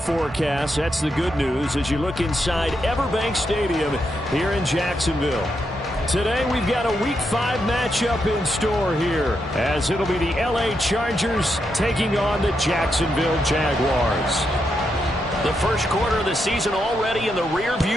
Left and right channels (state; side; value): normal; both; correlation 0.83